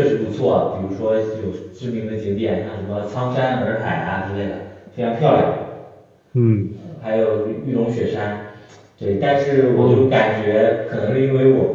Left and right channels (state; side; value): identical; both; correlation 1.00